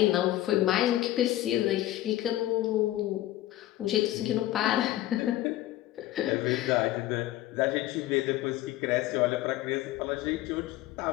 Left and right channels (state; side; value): quieter; right; 15.1 dB